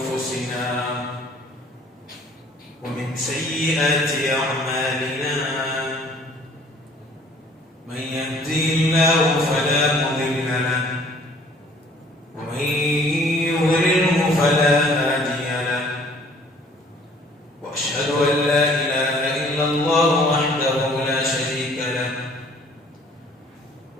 ومن سيئات أعمالنا من يهدي الله فلا مضل له ومن يضلله فلا هادي له وأشهد أن لا إله إلا الله وحده لا شريك له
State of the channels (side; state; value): both; normal; correlation 0.55